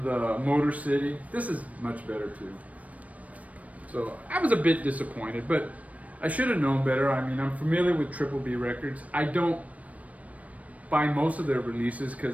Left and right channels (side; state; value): left; late; 0.068 ms